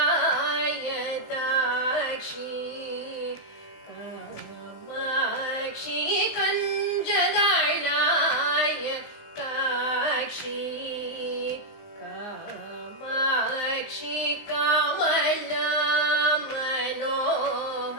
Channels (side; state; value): right; late; 19 ms